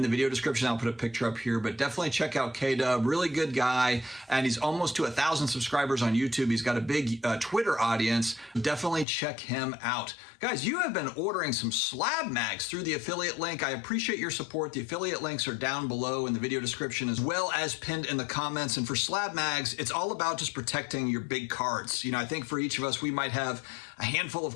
the video description, I'll put a picture up here, but definitely check out K-Dub. Really good guy. And he's almost to 1,000 subscribers on YouTube. He's got a big Twitter audience. Definitely check him out. Guys, you have been ordering some SlabMags through the affiliate link. I appreciate your support. The affiliate links are down below in the video description as well as pinned in the comments. And for SlabMags, it's all about just protecting your big cards. You know, I think for each of us, we might have a handful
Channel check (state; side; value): drops out; right; at 9.1 s